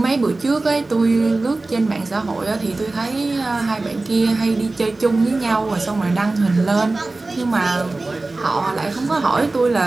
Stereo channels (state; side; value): quieter; left; 3.2 dB